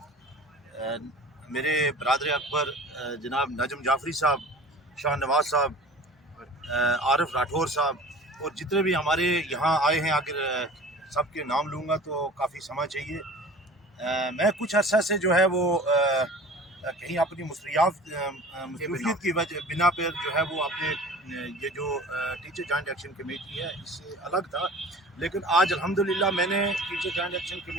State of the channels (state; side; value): normal; both; correlation 0.41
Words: मेरे बरदर अकबर जनाब नजम जाफरी साहब, शाह नवाज साहब, आरिफ राठौर साहब और जितने भी हमारे यहाँ आए हैं। अगर सबके नाम लूँगा तो काफ़ी समय चाहिए। मैं कुछ अर्सा से जो है वो कहीं अपनी मसरूफियत की वजह बिना पर जो है वो अपने ये जो टीचर जॉइंट एक्शन कमेटी है इससे अलग था। लेकिन आज अल्हम्दुलिल्लाह मैंने टीचर जॉइंट एक्शन